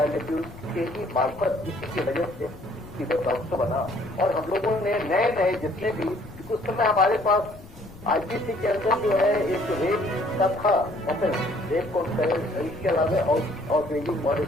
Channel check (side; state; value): left; noise; rumble, 19 dB below the sound